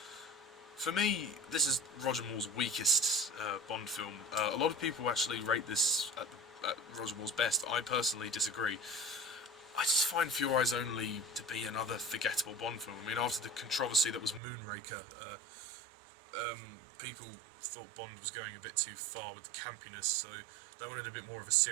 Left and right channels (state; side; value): drops out; left; at 14.4 s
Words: For me, this is Roger Moore's weakest Bond film. A lot of people actually rate this at Roger Moore's best. I personally disagree. I just find For Your Eyes Only to be another forgettable Bond film. I mean, after the controversy that was Moonraker, people thought Bond was going a bit too far with the campiness, so they wanted a bit more of a